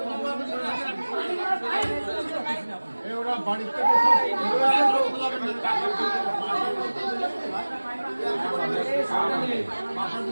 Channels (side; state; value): both; inverted; correlation -1.00